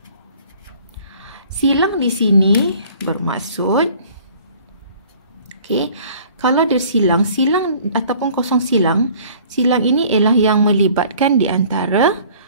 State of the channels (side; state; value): both; inverted; correlation -0.53